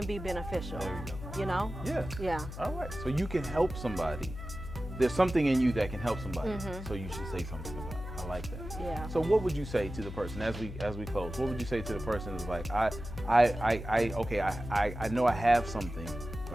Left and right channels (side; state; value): left; noise; hum, 10 dB below the sound